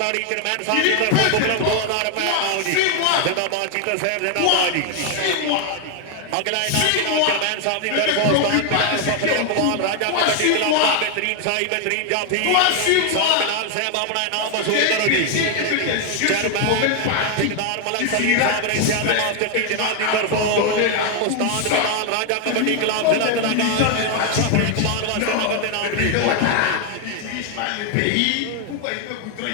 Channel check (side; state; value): both; different; correlation 0.01